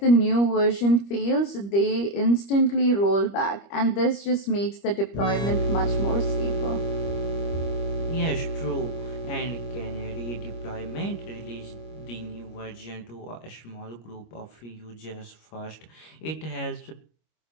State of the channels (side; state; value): right; late; 25 ms